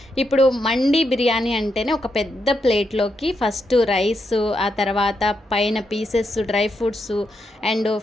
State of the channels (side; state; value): both; normal; correlation 0.82